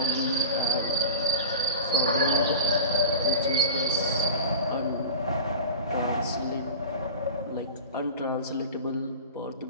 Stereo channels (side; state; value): both; inverted; correlation -0.32